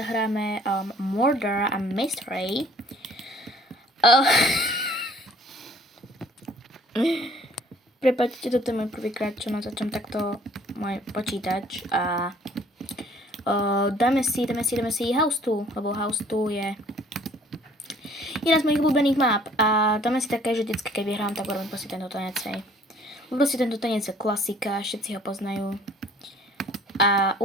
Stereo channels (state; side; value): normal; both; correlation 0.56